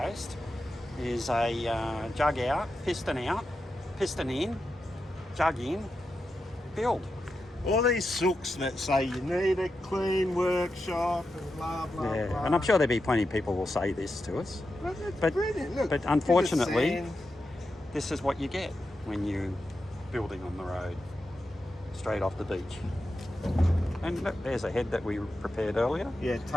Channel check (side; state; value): both; normal; correlation 0.88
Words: is a jug out, piston in, jug in, build. All these sooks that say you need a clean workshop and blah blah blah. And I'm sure there'll be plenty of people will say this to us. Well, that's But- brilliant. Look, but bit of unfortunately- sand. This is what you get when you're building on the road, straight off the beach. And look, there's a head that we prepared earlier. Yeah,